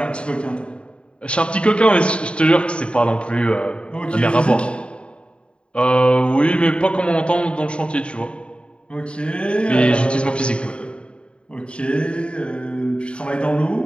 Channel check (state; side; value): late; right; 0.055 ms